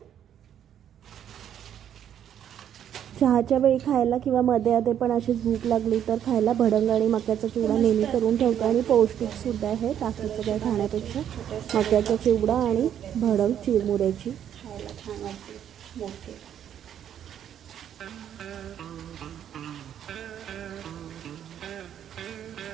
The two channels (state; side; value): quieter; left; 9.8 dB